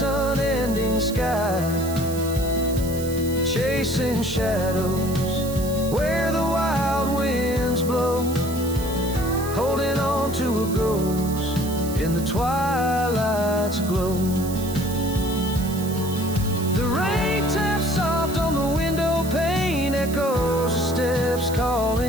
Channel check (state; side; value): noise; right; hiss, 12 dB below the sound